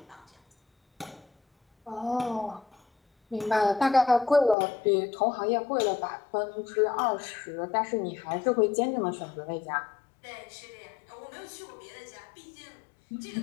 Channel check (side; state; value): right; drops out; at 4.5 s